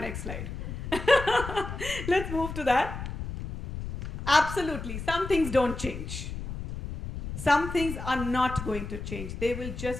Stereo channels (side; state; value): left; noise; rumble, 7 dB below the sound